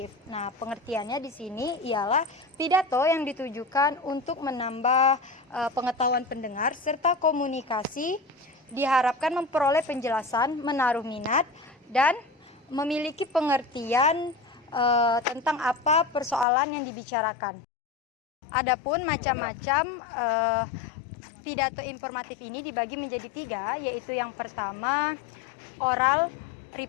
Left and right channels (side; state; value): right; drops out; at 16.4 s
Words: Nah, pengertiannya di sini ialah pidato yang ditujukan untuk menambah pengetahuan pendengar serta komunikasi, diharapkan memperoleh penjelasan, menaruh minat, dan memiliki pengertian tentang apa persoalan yang dibicarakan. Adapun macam-macam pidato informatif ini dibagi menjadi 3, yaitu yang pertama oral